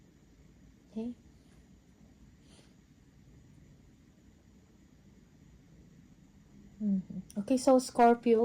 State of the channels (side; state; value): both; identical; correlation 1.00